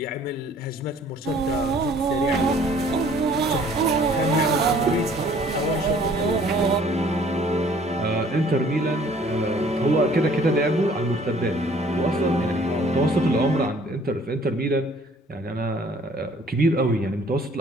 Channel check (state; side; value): normal; both; correlation 0.56